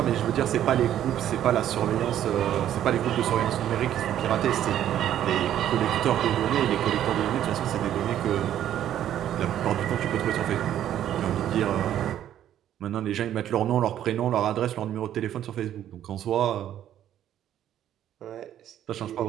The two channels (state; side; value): quieter; left; 11.2 dB